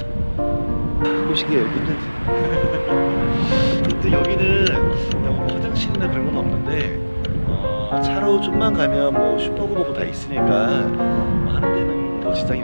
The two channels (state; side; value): inverted; both; correlation -1.00